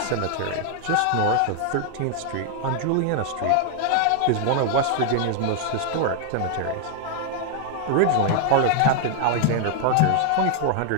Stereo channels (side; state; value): both; different; correlation 0.00